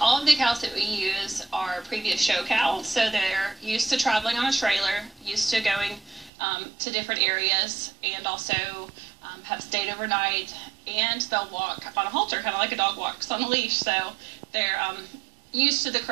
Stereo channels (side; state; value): left; drops out; at 6.3 s